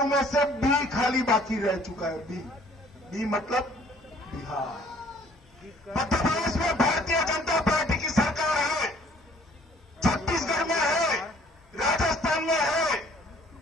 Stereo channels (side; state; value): both; normal; correlation 0.57